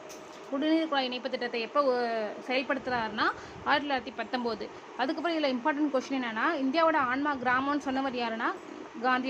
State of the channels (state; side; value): identical; both; correlation 1.00